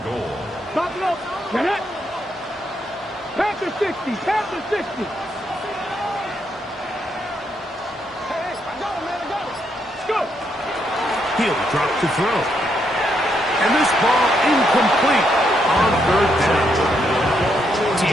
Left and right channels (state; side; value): normal; both; correlation 0.77